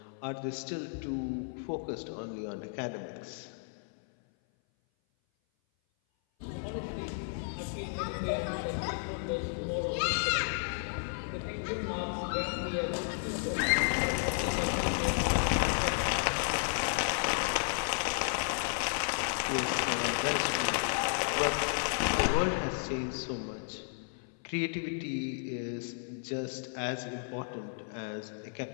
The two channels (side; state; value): right; silent; 56 dB below the other